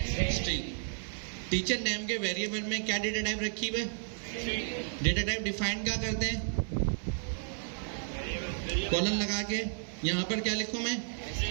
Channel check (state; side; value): silent; left; 56 dB below the other